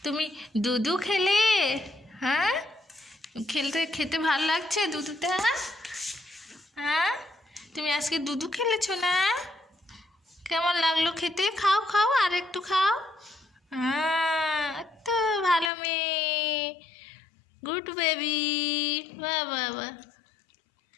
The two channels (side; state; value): right; drops out; at 15.7 s